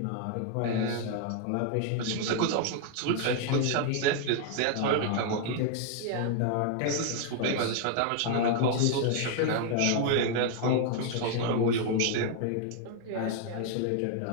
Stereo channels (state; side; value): different; both; correlation 0.00